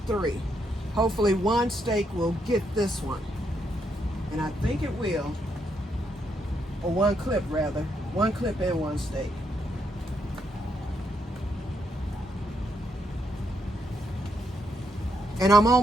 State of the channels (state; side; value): normal; both; correlation 0.77